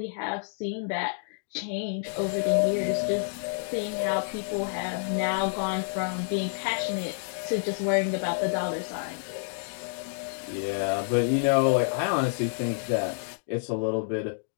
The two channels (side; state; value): right; silent; digital silence